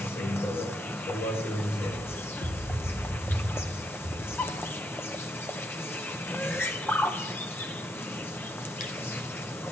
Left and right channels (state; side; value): normal; both; correlation 0.76